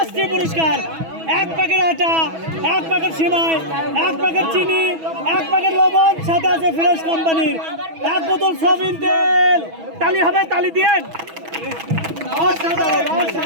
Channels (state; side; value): late; left; 6.1 ms